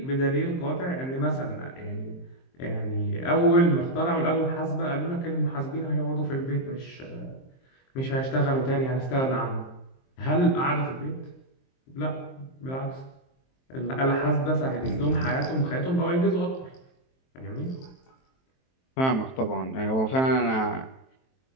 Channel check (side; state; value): right; late; 23 ms